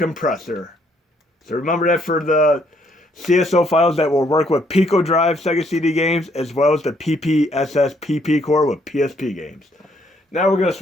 So remember that for the CSO files that will work with Pico Drive Sega CD games as well as the PPSS PP core with PSP games. Now we're going to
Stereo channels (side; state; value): both; normal; correlation 0.69